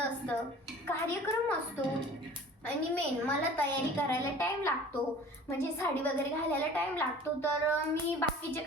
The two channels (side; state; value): both; normal; correlation 0.45